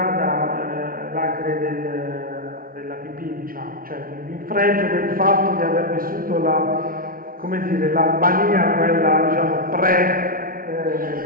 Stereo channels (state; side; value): late; left; 0.42 ms